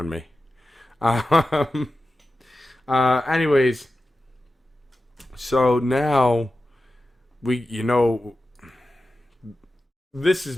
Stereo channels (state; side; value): normal; both; correlation 0.93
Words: me. Anyways, so now this is